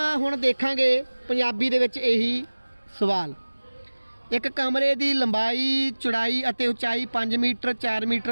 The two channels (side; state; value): both; inverted; correlation -1.00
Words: ਹੁਣ ਦੇਖਾਂਗੇ ਪੰਜਾਬੀ ਦੇ ਵਿੱਚ ਇਹੀ ਸਵਾਲ। ਇੱਕ ਕਮਰੇ ਦੀ ਲੰਬਾਈ, ਚੌੜਾਈ ਅਤੇ ਉਚਾਈ 5 ਮੀਟਰ, 4